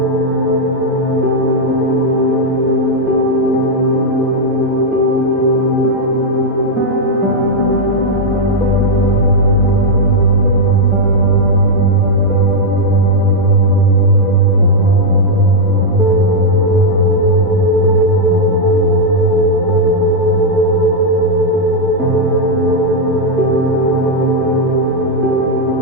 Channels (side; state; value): both; normal; correlation -0.02